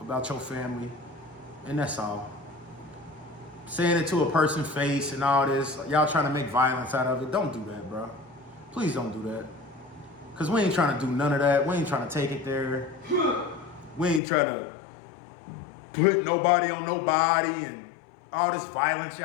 your family. And that's all. Saying it to a person's face and all this, y'all trying to make violence out of it. Don't do that, bro. Please don't do that. Because we ain't trying to do none of that. We ain't trying to take it there. We ain't trying to put nobody on nobody and all this violence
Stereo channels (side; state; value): right; drops out; at 14.2 s